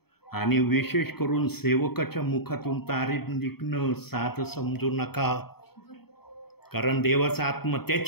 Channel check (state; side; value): late; right; 0.96 ms